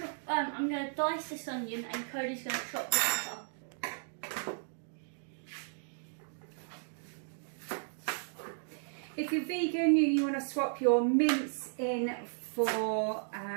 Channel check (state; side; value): silent; left; digital silence